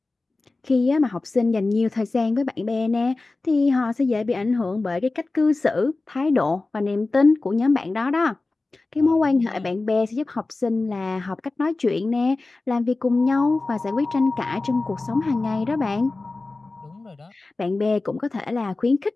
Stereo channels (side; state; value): right; quieter; 3.4 dB